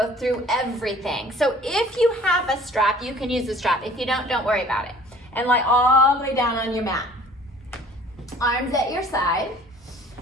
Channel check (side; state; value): both; normal; correlation 0.51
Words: through everything. So if you have a strap, you can use the strap. If you don't worry about it. And lie all the way down on your mat. Arms at your side.